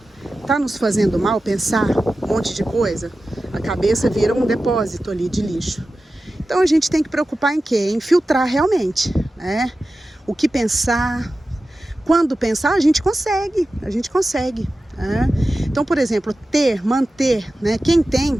Tá nos fazendo mal pensar um monte de coisa? A cabeça vira um depósito ali de lixo. Então a gente tem que preocupar em quê? Em filtrar realmente, né? O que pensar, quando pensar, a gente consegue, né? Então, por exemplo, manter, né? Quem tem,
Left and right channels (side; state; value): both; normal; correlation 0.94